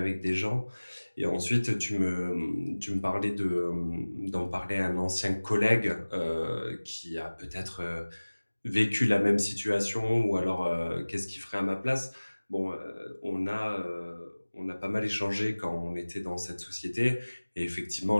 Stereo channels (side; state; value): both; inverted; correlation -1.00